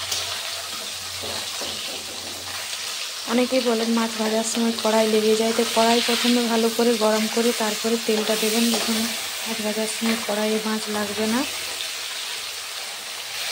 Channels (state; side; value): identical; both; correlation 1.00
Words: অনেকেই বলেন মাছ ভাজার সময় কড়াই লেগে যায়, তো কড়াই প্রথমে ভালো করে গরম করে তারপরে তেলটা দেবেন। দেখুন মাছ ভাজার সময় কড়াইয়ে মাছ লাগবে না।